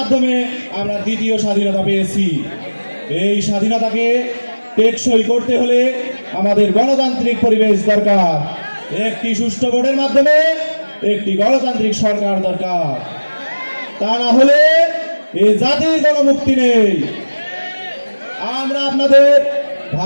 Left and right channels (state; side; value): inverted; both; correlation -1.00